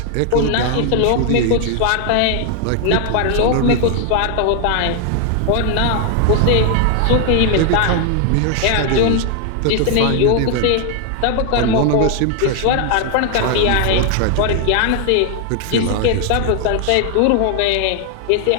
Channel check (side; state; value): both; different; correlation 0.00